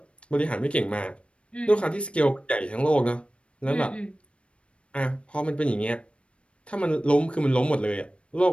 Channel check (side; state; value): right; late; 0.060 ms